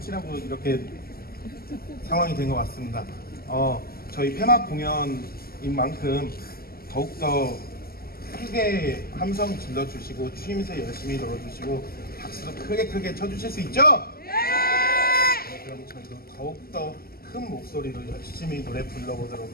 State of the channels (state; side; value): late; right; 0.44 ms